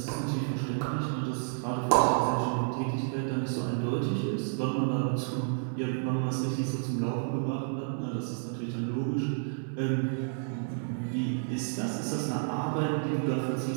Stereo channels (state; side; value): silent; left; 57 dB below the other